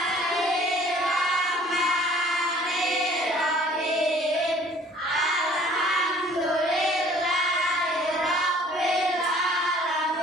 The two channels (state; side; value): normal; both; correlation 0.54